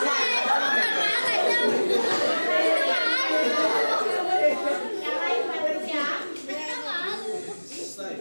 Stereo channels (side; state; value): both; inverted; correlation -1.00